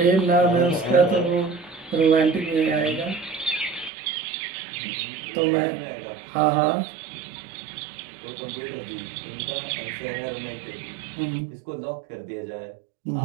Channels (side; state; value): left; drops out; at 3.9 s